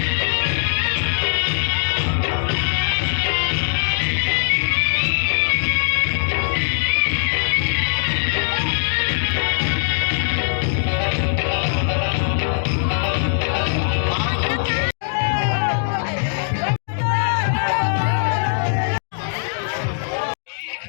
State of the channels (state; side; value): silent; right; digital silence